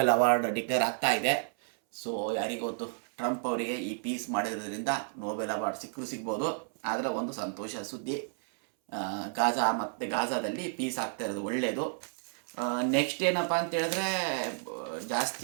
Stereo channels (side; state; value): left; silent; 57 dB below the other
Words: ಅವಾರ್ಡ್ ಡಿಕ್ಲೇರ್ ಆಗ್ತಾ ಇದೆ. ಸೊ ಯಾರಿಗೊತ್ತು, ಟ್ರಂಪ್ ಅವರಿಗೆ ಈ ಪೀಸ್ ಮಾಡಿರೋದ್ರಿಂದ ನೋಬೆಲ್ ಅವಾರ್ಡ್ ಸಿಗ್ಬೋದು. ಆದರೆ ಒಂದು ಸಂತೋಷ ಸುದ್ದಿ, ಗಾಜಾದಲ್ಲಿ ಪೀಸ್ ಆಗ್ತಾ ಇರೋದು ಒಳ್ಳೆಯದು. ನೆಕ್ಸ್ಟ್ ಏನಪ್ಪ ಅಂತ ಹೇಳಿದ್ರೆ,